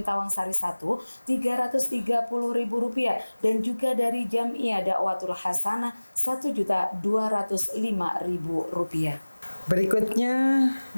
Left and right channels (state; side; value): inverted; both; correlation -1.00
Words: Tawang Sari 1 Rp330.000, dan juga dari Jam'iyah Dakwatul Hasanah Rp1.205.000. Berikutnya